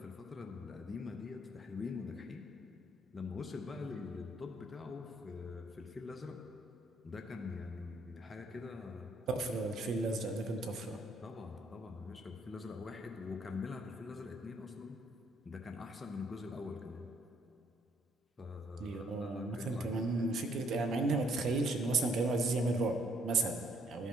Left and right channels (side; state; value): both; normal; correlation 0.67